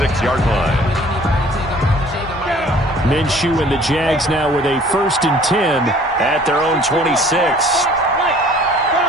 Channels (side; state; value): both; normal; correlation 0.53